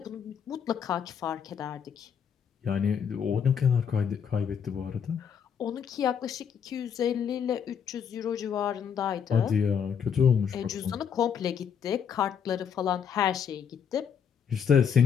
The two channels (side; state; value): right; quieter; 7.6 dB